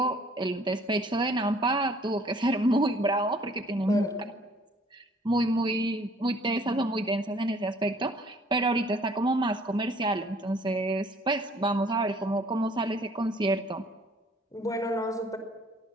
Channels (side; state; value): both; normal; correlation 0.58